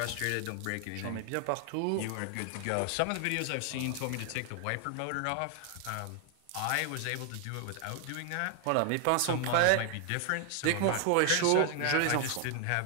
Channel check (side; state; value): both; different; correlation 0.00